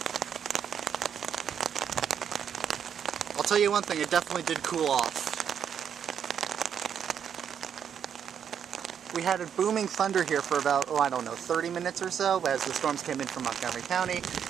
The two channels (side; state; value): left; quieter; 8.2 dB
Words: I'll tell you one thing, it definitely did cool off. We had a booming thunder here for about, 30 minutes or so as the storms came in from Montgomery County.